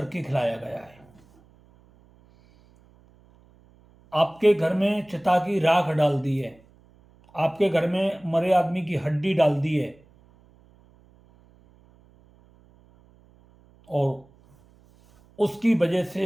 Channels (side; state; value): right; noise; hum, 29 dB below the sound